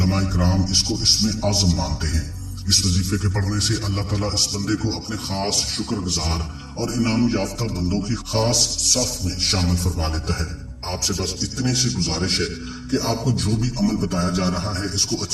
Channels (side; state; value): both; identical; correlation 1.00